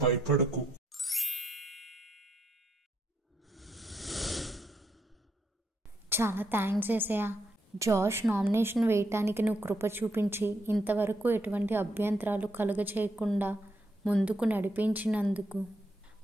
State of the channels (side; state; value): both; normal; correlation 0.78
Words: భయపడకు. చాలా థ్యాంక్స్ ఏసయ్య. జాష్ నామినేషన్ వేయటానికి నువ్వు కృప చూపించి ఇంతవరకు ఎటువంటి అభ్యంతరాలు కలుగచేయకుండా ముందుకు నడిపించినందుకు